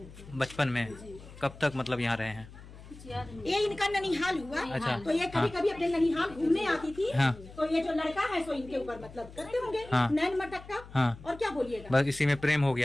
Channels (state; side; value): noise; left; hum, 18 dB below the sound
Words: थे। बचपन में? कब तक मतलब यहाँ रहे हैं? ये इनका ननिहाल हुआ। अच्छा। तो ये कभी कभी अपने ननिहाल घूमने आती थी। हाँ। तो ये जो लड़का है सो इनके ऊपर मतलब करते होंगे हाँ। नैन मटक्का। हाँ। और क्या बोलिएगा, बस इसी में प्रेम हो